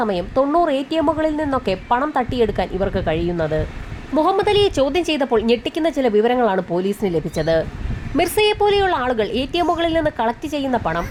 90 ATMകളിൽ നിന്നൊക്കെ പണം തട്ടിയെടുക്കാൻ ഇവർക്ക് കഴിയുന്നത്. മുഹമ്മദ് അലിയെ ചോദ്യം ചെയ്തപ്പോൾ ഞെട്ടിക്കുന്ന ചില വിവരങ്ങളാണ് പോലീസിന് ലഭിച്ചത്. മിർസയെ പോലെയുള്ള ആളുകൾ ATMകളിൽ നിന്ന് കളക്ട് ചെയ്യുന്ന പണം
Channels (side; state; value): both; identical; correlation 1.00